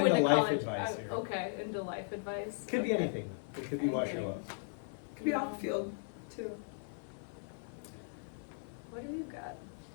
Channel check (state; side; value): silent; right; 53 dB below the other